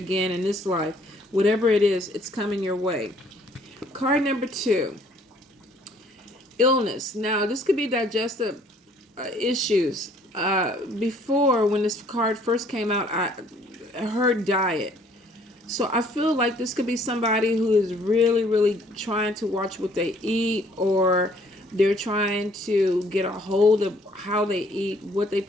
in this life. Whatever it is, it's coming your way. Card number 2, illness. Now, this could be digestive issues. Before, when this card first came out, I heard diet. So I feel like this could be somebody who is really, really trying to watch what they eat, or they're trying to get a hold of how they eat, what they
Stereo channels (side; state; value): both; normal; correlation 0.60